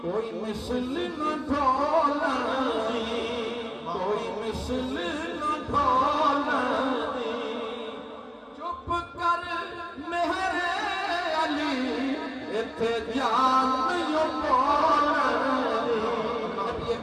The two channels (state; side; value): identical; both; correlation 1.00